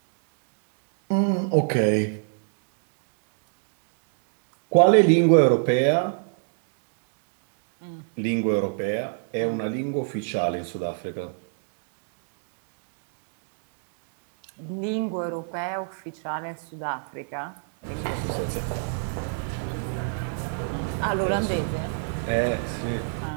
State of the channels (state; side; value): silent; left; digital silence